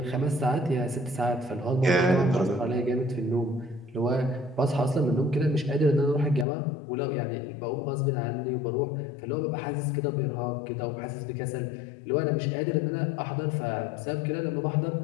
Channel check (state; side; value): drops out; right; at 6.5 s